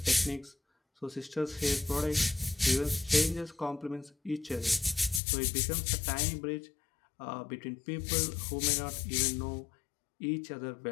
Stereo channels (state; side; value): drops out; right; at 5.2 s